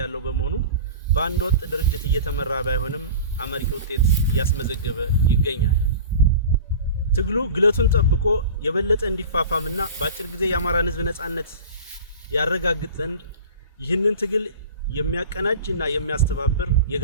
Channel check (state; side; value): inverted; both; correlation -0.36